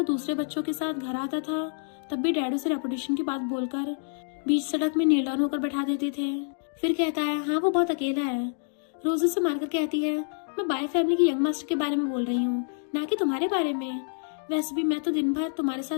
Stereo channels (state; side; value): silent; right; 60 dB below the other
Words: दूसरे बच्चों के साथ घर आता था तब भी डैड उसे रेपुटेशन की बात बोलकर बीच सड़क में नील डाउन होकर बैठा देते थे। फिर कहता है हाँ वो बहुत अकेला है। रोजी से मारकर कहती है मैं बाय फैमिली की यंग मास्टर के बारे में बोल रही हूँ, ना कि तुम्हारे बारे में। वैसे भी मैं तो दिन भर तुम्हारे